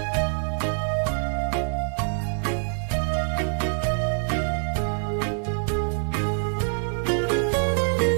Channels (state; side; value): silent; left; 58 dB below the other